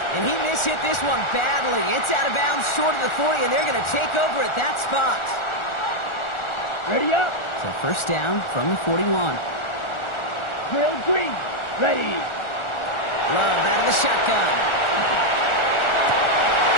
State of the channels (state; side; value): late; right; 1.4 ms